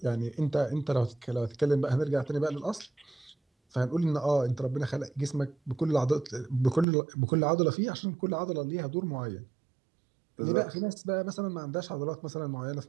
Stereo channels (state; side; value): drops out; left; at 6.9 s